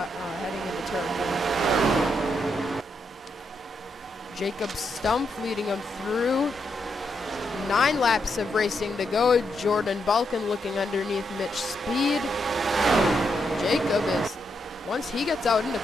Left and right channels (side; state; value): both; normal; correlation 0.81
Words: into turn 1. Jacob Stump leading him through. 9 laps of racing to go. Jordan Balkin looking underneath Mitch Speed. Jacob is, once he gets out into